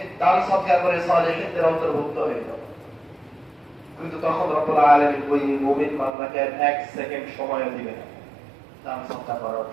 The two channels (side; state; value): left; drops out; at 6.1 s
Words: দান সদকা করে সালেহিনদের অন্তর্ভুক্ত হয়ে যাব। কিন্তু তখন রব্বুল আলামিন ওই মুমিন বান্দাকে এক সেকেন্ড সময় দিবেন না দান সদকা করার